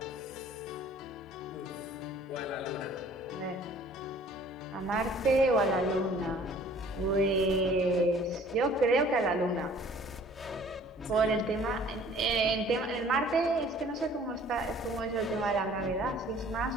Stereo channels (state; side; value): normal; both; correlation 0.53